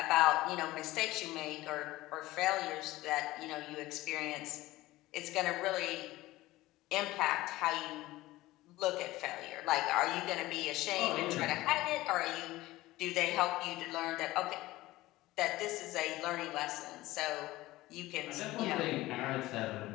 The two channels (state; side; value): quieter; right; 17.9 dB